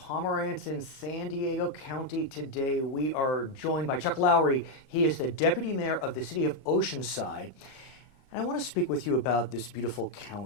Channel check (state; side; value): late; right; 37 ms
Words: in San Diego County. Today we are joined by Chuck Lowery. He is the Deputy Mayor of the City of Oceanside. And I want to speak with you about this beautiful